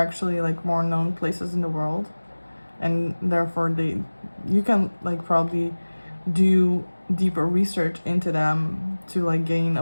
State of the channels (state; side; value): inverted; both; correlation -1.00